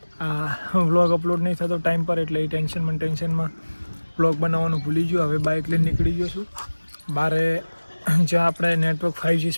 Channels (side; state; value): both; inverted; correlation -1.00